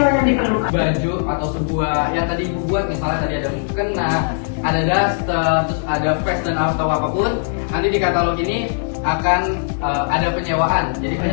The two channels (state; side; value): silent; right; digital silence